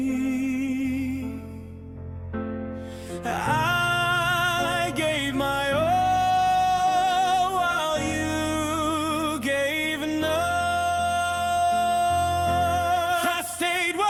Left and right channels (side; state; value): both; identical; correlation 1.00